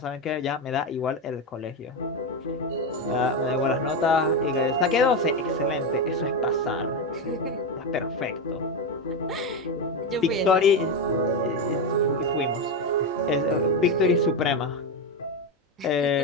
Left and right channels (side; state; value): both; normal; correlation 0.12